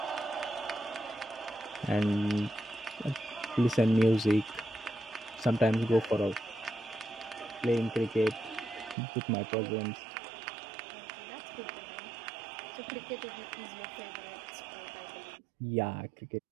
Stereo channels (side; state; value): left; drops out; at 9.0 s